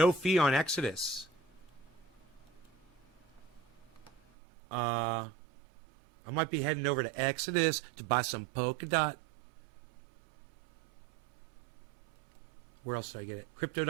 fee on Exodus. I might be heading over to Exodus to buy some Polkadot. Where else did I get it?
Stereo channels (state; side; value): drops out; left; at 4.2 s